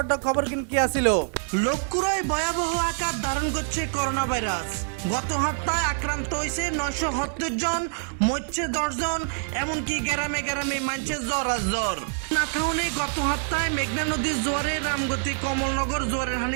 খবর কি আসিল। লক্ষ্মীপুরে ভয়াবহ আকার ধারণ করছে করোনা ভাইরাস। গত সপ্তাহে আক্রান্ত হয়েছে 970 জন, মরছে 10 জন, এমনকি গ্রামে গ্রামে মানছে জ্বর। নাথাউনে গত সপ্তাহে মেঘনা নদীর জোয়ারে রামগতি কমলনগর জোয়ারের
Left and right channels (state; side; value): silent; left; digital silence